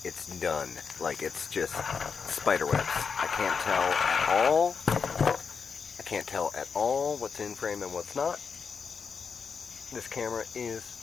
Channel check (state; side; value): quieter; right; 5.8 dB